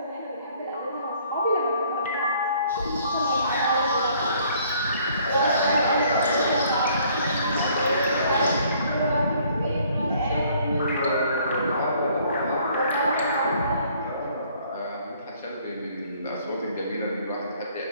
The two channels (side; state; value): both; inverted; correlation -0.61